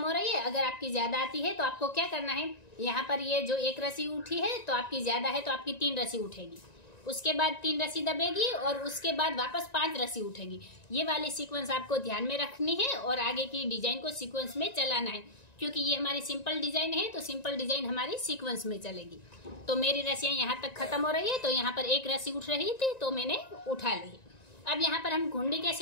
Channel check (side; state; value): right; late; 1.9 ms